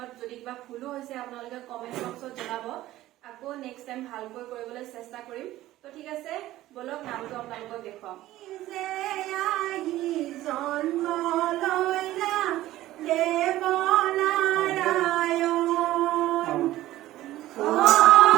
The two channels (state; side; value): quieter; left; 15.3 dB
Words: যদি কিবা ভুলো হৈছে আপোনালোকে কমেন্ট বক্সত জনাব। আকৌ নেক্সট টাইম ভালকৈ কৰিবলৈ চেষ্টা কৰিম। তো ঠিক আছে, বলক নামটো আপোনালোকক দেখুৱাম।